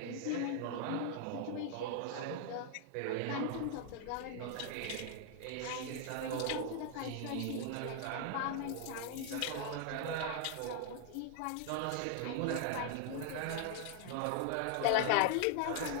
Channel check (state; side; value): different; both; correlation 0.00